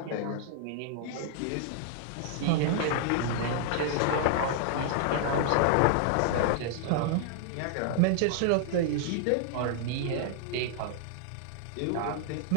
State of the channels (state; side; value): different; both; correlation -0.01